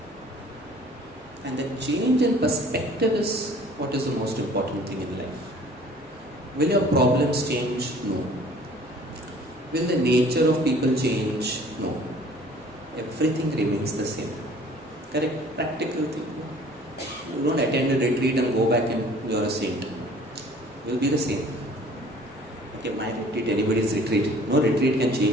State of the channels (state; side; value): normal; both; correlation 0.52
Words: And the change in perspective is what is the most important thing in life. Will your problems change? No. Will the nature of people change? No. Everything remains the same. Correct? Practical thing. You don't attend a retreat and go back and you're a saint. You'll be the same. Okay, my retreat, anybody's retreat. No retreat can